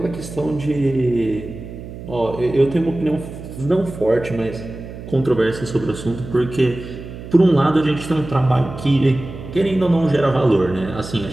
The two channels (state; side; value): noise; right; hum, 12 dB below the sound